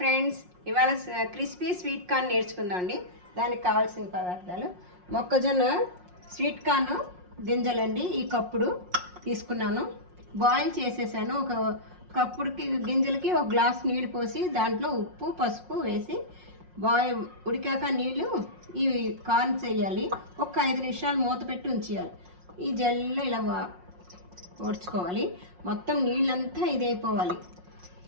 ఇవాళ crispy sweet corn నేర్చుకుందామండి. దానికి కావాల్సిన పదార్థాలు: మొక్కజొన్న స్వీట్ కార్న్ గింజలండి, ఈ కప్పుడు తీసుకున్నాను. బాయిల్ చేసేసాను. ఒక కప్పుడుకి గింజలకి ఒక గ్లాస్ నీళ్ళు పోసి దాంట్లో ఉప్పు పసుపు వేసి ఉడికాక నీళ్ళు ఈ కార్న్ చేయాలి. ఒక 5 నిమిషాలు మూత పెట్టి ఉంచేయాలి. ఈ జల్లో ఇలా ఓడ్చుకోవాలి. మొత్తం నీళ్ళంతా ఇదైపోవాలి.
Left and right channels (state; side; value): late; left; 5.5 ms